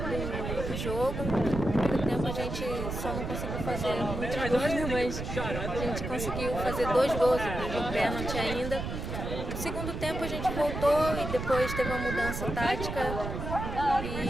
jogo. No primeiro tempo a gente só não conseguiu fazer muitos gols, né? Mas a gente conseguiu fazer 2 gols, de pênalti ainda. No segundo tempo a gente voltou e depois teve uma mudança tática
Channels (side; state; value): right; noise; rumble, 5 dB below the sound